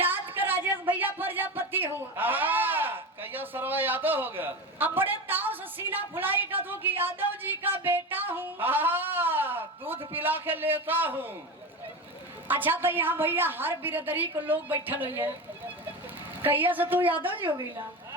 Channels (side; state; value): both; normal; correlation 0.24